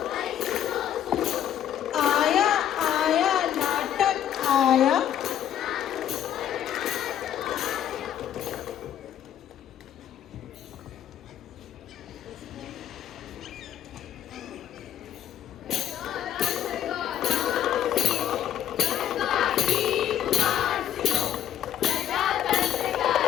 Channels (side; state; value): right; quieter; 10.5 dB